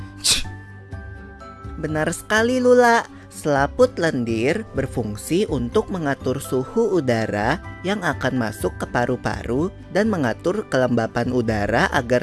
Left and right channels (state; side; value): identical; both; correlation 1.00